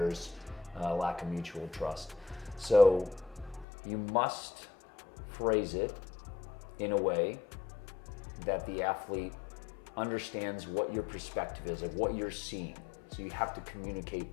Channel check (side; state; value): right; drops out; at 3.7 s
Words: a lack of mutual trust. So you must phrase it in a way that the athlete understands what your perspective is, like what you're seeing. So you have to communicate